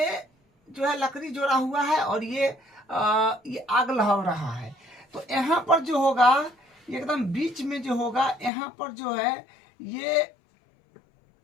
जो है लकड़ी जोड़ा हुआ है और ये आग लहर रहा है। तो यहाँ पर जो होगा एकदम बीच में जो होगा यहाँ पर जो है ये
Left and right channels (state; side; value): drops out; right; at 8.5 s